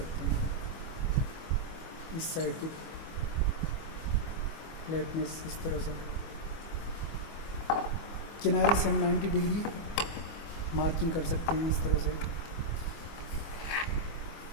हैं। इस साइड की फ्लैटनेस इस तरह से किनारे से हम 90 डिग्री मार्किंग कर सकते हैं इस तरह से।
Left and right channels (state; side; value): late; right; 24 ms